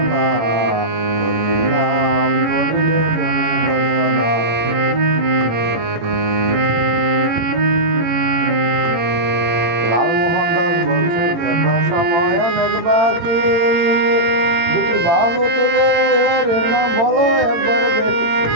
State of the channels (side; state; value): left; late; 18 ms